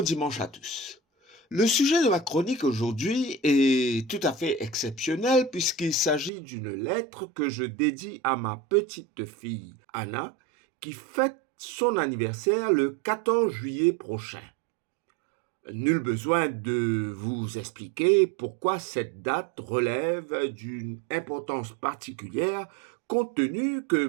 dimanche à tous. Le sujet de ma chronique aujourd'hui est tout à fait exceptionnel puisqu'il s'agit d'une lettre que je dédie à ma petite fille Anna qui fête son anniversaire le 14 juillet prochain. Nul besoin de vous expliquer pourquoi cette date relève d'une importance particulière compte tenu que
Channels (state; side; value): drops out; left; at 6.3 s